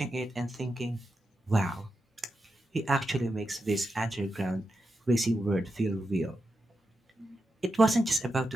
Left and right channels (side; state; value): both; normal; correlation 0.88